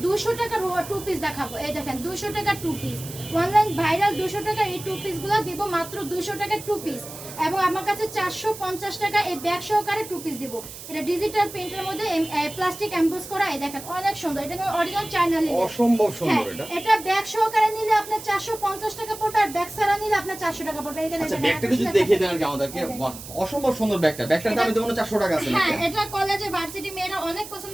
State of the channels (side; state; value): right; noise; hiss, 13 dB below the sound